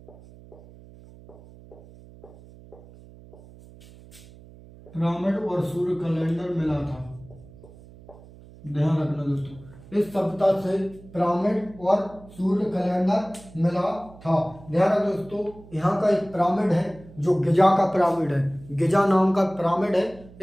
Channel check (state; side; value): noise; right; hum, 21 dB below the sound